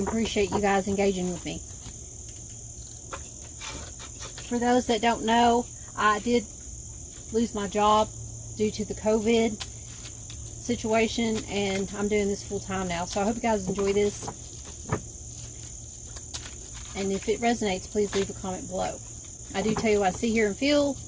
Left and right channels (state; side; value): identical; both; correlation 1.00